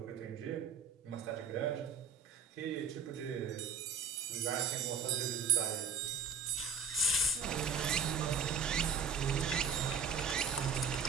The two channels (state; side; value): quieter; left; 5.5 dB